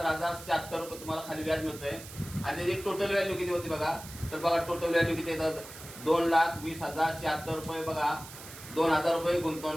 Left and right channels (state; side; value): noise; right; hiss, 15 dB below the sound